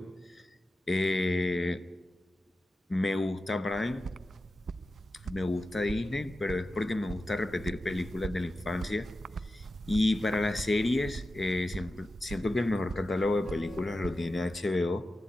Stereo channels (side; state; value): both; normal; correlation 0.92